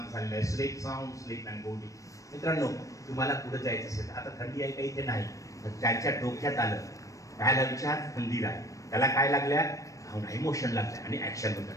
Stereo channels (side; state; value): right; late; 0.16 ms